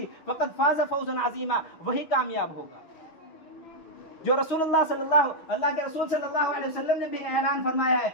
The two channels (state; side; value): late; right; 6.3 ms